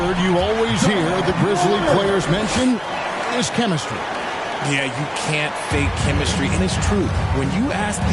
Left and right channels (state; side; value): identical; both; correlation 1.00